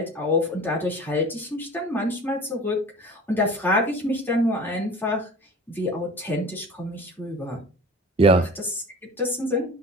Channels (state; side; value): normal; both; correlation 0.40